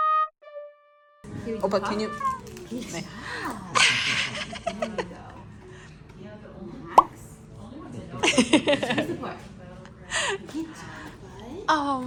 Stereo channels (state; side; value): identical; both; correlation 1.00